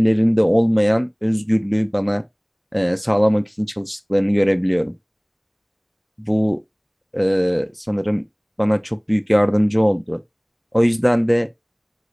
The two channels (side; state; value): both; identical; correlation 1.00